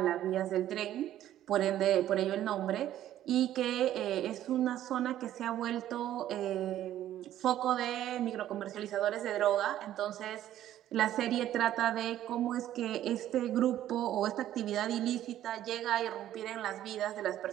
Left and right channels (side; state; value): left; quieter; 12.4 dB